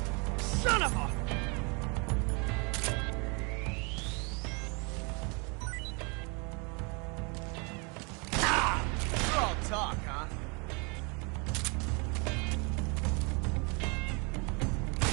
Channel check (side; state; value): left; quieter; 32.1 dB